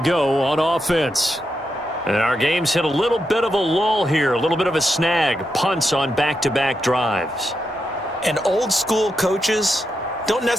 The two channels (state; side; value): normal; both; correlation 0.85